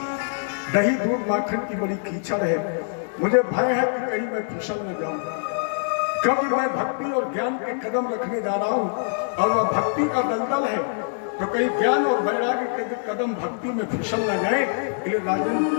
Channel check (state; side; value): silent; right; digital silence